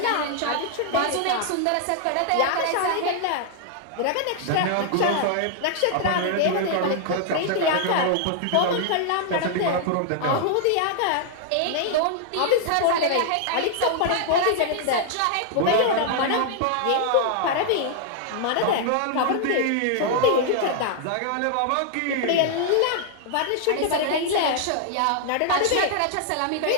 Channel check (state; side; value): different; both; correlation -0.01